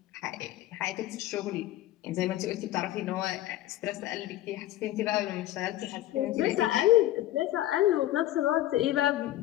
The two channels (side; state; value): right; quieter; 14.5 dB